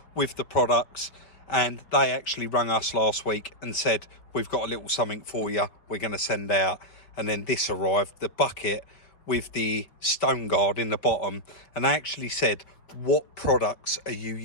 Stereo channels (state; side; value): late; right; 5.1 ms